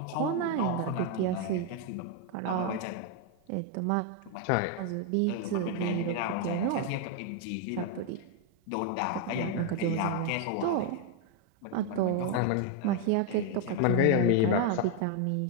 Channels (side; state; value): both; different; correlation 0.01